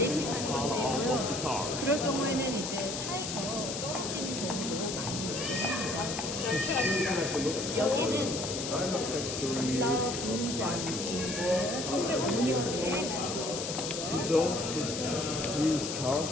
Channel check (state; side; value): noise; left; hiss, 5 dB below the sound